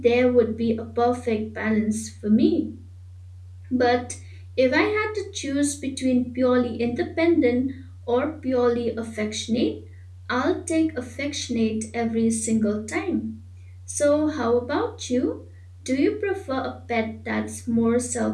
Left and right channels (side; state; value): both; identical; correlation 1.00